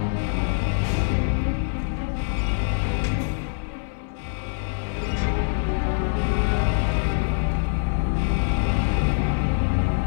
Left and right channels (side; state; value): right; silent; 62 dB below the other